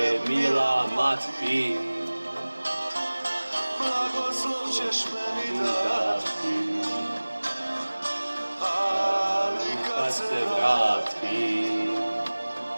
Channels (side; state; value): both; inverted; correlation -1.00